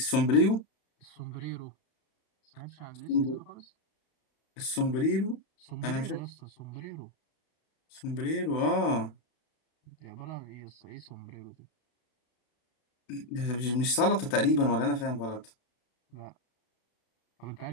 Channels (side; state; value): right; late; 33 ms